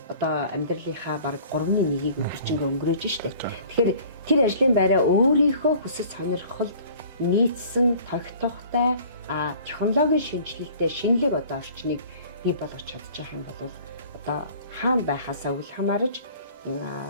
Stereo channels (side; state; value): both; inverted; correlation -0.50